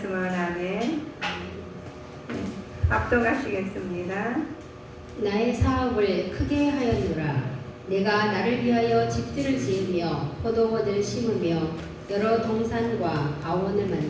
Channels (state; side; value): identical; both; correlation 1.00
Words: 아멘. 합독하시겠습니다. 나의 사업을 크게 하였노라. 내가 나를 위하여 집들을 지으며 포도원을 심으며 여러 동산과 아원을